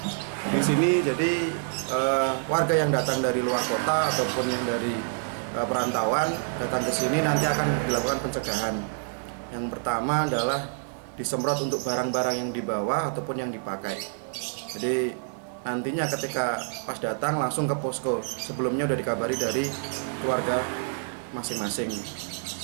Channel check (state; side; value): silent; left; digital silence